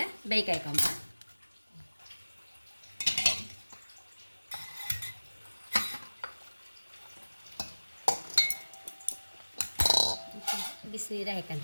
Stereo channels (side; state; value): both; inverted; correlation -1.00